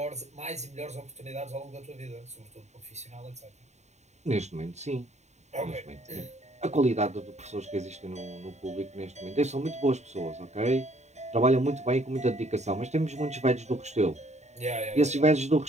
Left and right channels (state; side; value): late; left; 0.33 ms